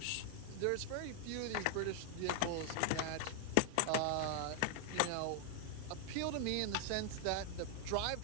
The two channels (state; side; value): different; both; correlation 0.00